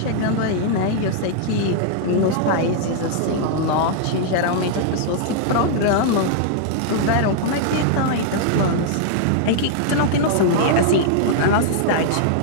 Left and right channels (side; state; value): both; different; correlation -0.01